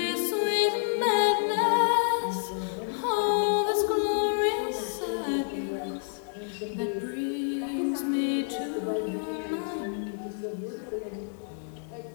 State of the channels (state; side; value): silent; right; 59 dB below the other